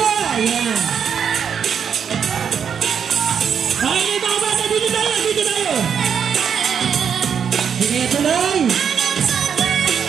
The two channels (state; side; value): quieter; left; 7.4 dB